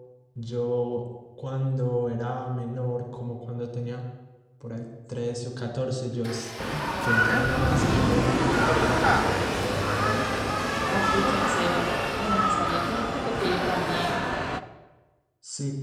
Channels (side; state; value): both; identical; correlation 1.00